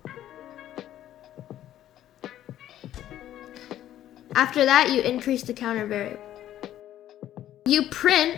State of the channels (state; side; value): quieter; right; 12.2 dB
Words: After that, you increase the counter variable. You print